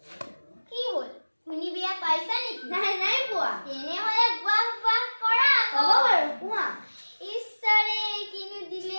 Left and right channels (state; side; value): inverted; both; correlation -1.00